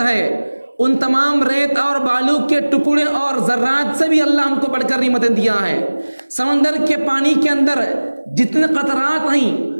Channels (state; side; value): inverted; both; correlation -1.00